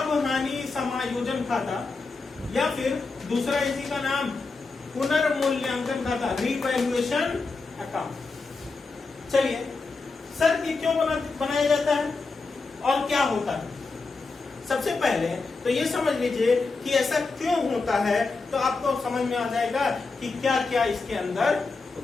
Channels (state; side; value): quieter; right; 4.0 dB